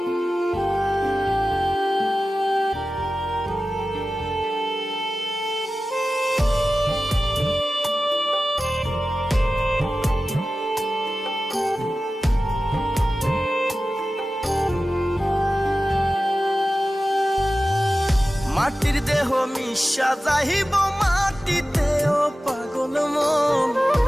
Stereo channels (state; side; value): normal; both; correlation 0.95